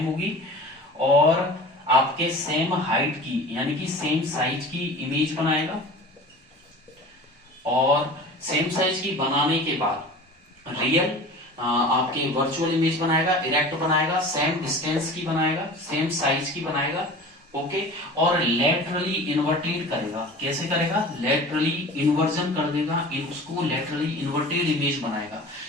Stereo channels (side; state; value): both; normal; correlation 0.38